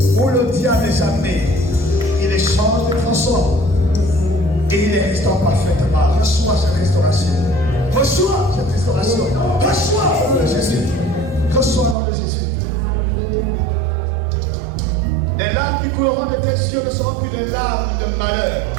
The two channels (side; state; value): left; drops out; at 12.0 s